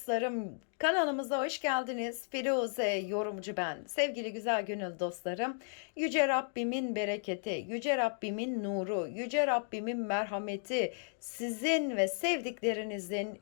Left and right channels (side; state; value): right; silent; digital silence